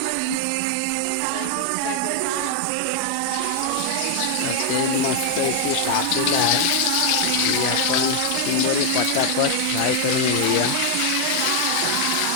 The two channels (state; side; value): different; both; correlation 0.00